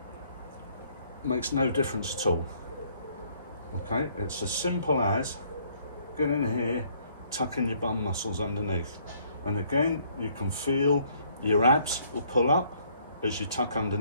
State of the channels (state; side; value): inverted; both; correlation -0.64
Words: makes no difference at all. Okay, it's as simple as getting in here, tucking your bum muscles underneath, and again you can feel your abs will pull up as you tuck